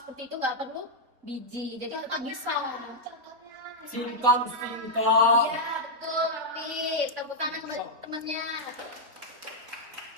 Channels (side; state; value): left; late; 4.2 ms